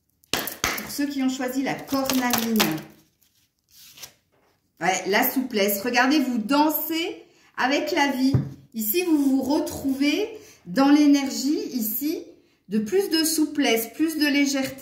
Pour ceux qui ont choisi la cornaline. Ouais, la souplesse. Regardez, vous dansez avec la vie. Ici, vous vous retrouvez dans l'énergie, ici, de plus de souplesse, plus de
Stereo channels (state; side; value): identical; both; correlation 1.00